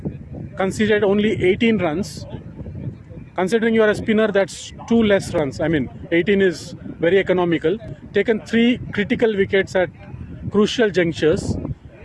conceded only 18 runs. Considering you are a spinner, that's 2 less runs. I mean, 18 is very economical. Taken 3 critical wickets at crucial junctures.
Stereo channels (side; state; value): both; identical; correlation 1.00